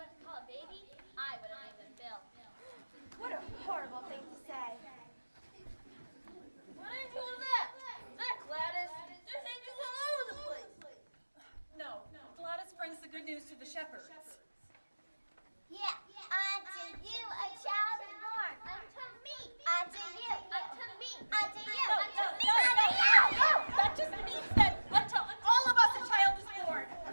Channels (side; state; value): both; inverted; correlation -1.00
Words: brings the good news to the shepherds? Yeah, unto you a child is born. Unto me. Unto you. Unto me. Unto you. Unto me. Unto you. No, that just means that unto all of us a child is born.